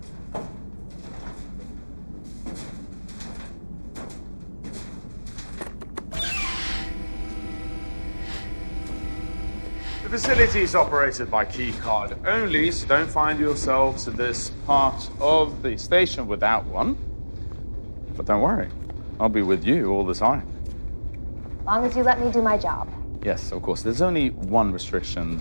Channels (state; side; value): inverted; both; correlation -1.00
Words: The facility is operated by key card only, so don't find yourselves in this part of the station without one. But don't worry, I'll be with you all the time. As long as you let me do my job. Yes, of course. There's only one restriction